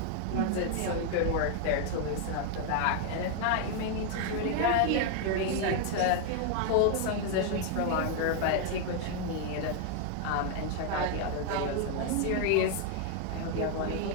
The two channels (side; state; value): both; different; correlation 0.00